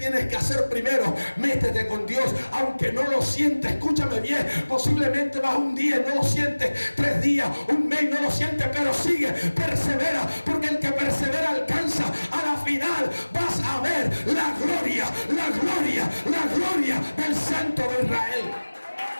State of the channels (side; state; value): both; inverted; correlation -1.00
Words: que hacer primero? Métete con Dios, aunque no lo sientes. Escúchame bien, posiblemente vas un día y no lo sientes, 3 días, un mes no lo sientes, pero sigue, persevera, porque el que persevera alcanza. A la final vas a ver la gloria, la gloria, la gloria del Santo de Israel.